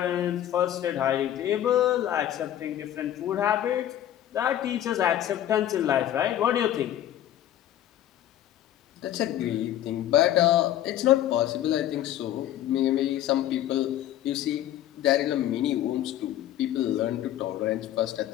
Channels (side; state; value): right; quieter; 12.1 dB